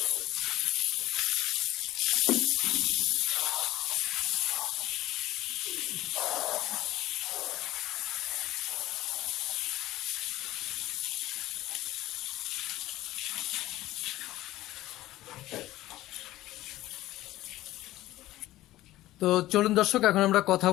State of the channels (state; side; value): quieter; right; 16.0 dB